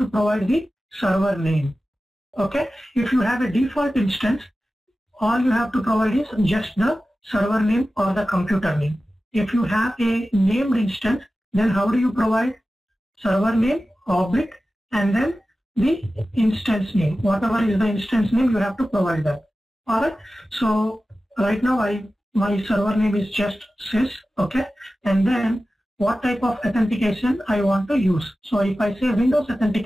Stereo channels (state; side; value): normal; both; correlation 0.95